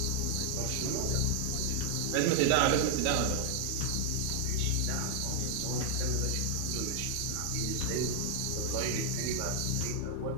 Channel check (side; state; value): both; different; correlation -0.01